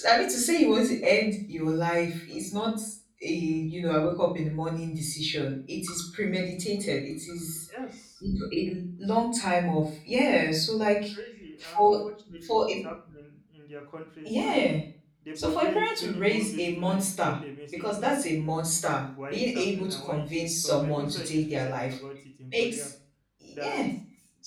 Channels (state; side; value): identical; both; correlation 1.00